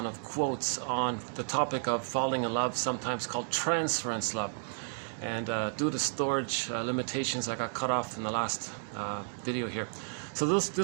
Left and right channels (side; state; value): left; silent; 56 dB below the other